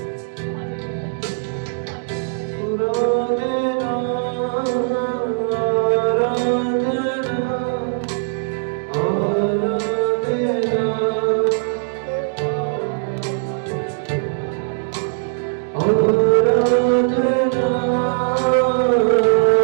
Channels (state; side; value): silent; left; digital silence